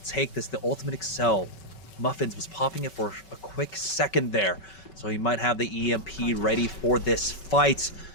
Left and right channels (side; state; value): right; late; 5.3 ms